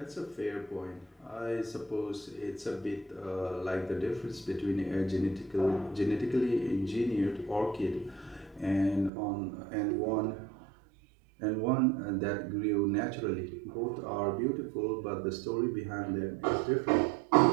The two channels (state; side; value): drops out; left; at 9.1 s